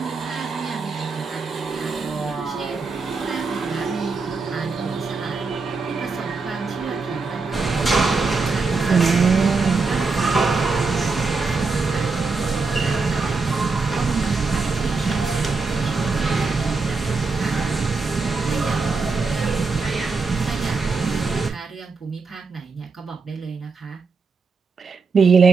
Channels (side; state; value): left; quieter; 4.3 dB